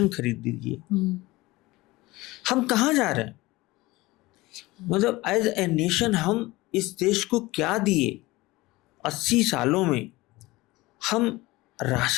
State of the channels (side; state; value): right; quieter; 20.3 dB